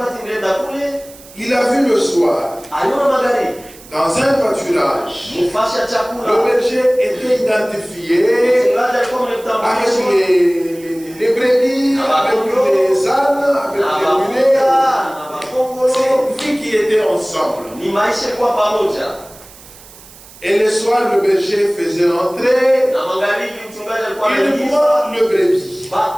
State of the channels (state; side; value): noise; right; hiss, 21 dB below the sound